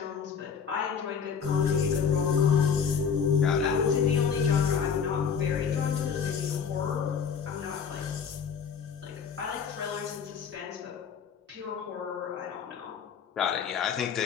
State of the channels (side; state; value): right; quieter; 6.7 dB